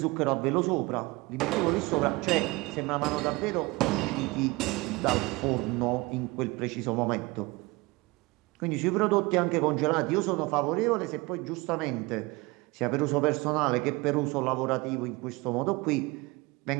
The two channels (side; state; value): left; quieter; 23.5 dB